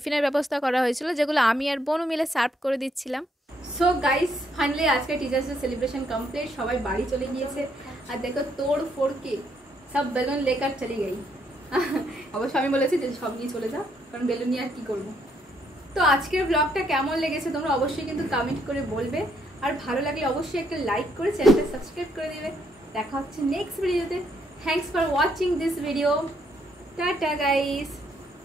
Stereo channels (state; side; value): normal; both; correlation 0.73